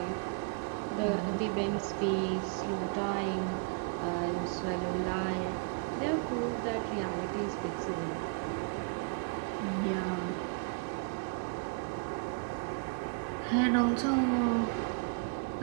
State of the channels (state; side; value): quieter; left; 36.3 dB